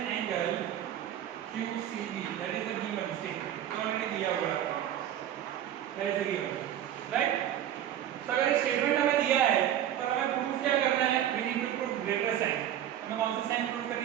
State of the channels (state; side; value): quieter; left; 11.1 dB